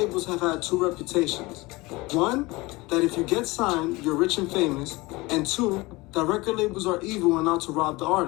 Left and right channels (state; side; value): quieter; right; 22.5 dB